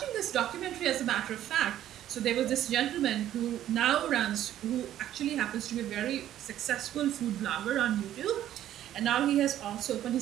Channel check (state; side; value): quieter; left; 12.1 dB